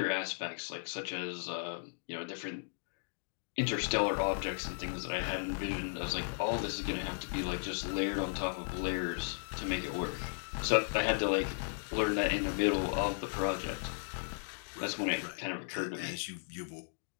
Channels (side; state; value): right; silent; digital silence